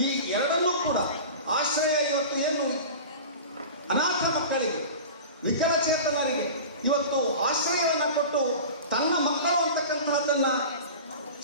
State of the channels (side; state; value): both; inverted; correlation -0.34